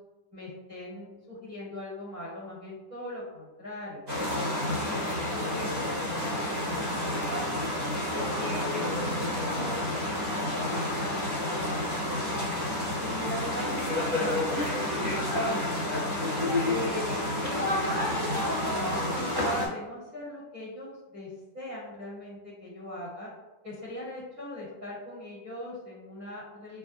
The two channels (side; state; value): left; late; 10 ms